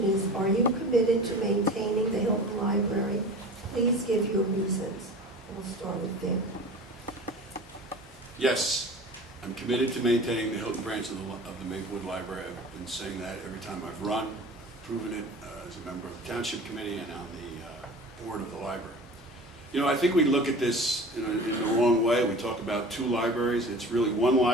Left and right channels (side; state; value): both; normal; correlation 0.39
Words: is, are you committed to maintaining the Hilton Library? Please give your reasons. We'll start with Vic. Yes, I'm committed to maintaining the Hilton branch of the Maplewood Library. I've been saying that every time I've run, proven it as a member of the Township Committee and on the board of the library. You know, I think we look at this in the wrong way. We talk about 2 libraries. It's really 1